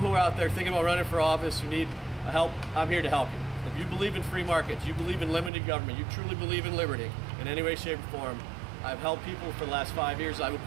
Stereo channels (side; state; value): left; drops out; at 5.5 s